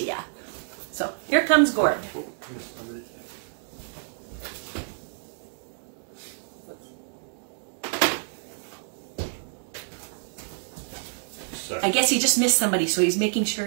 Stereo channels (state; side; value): silent; left; digital silence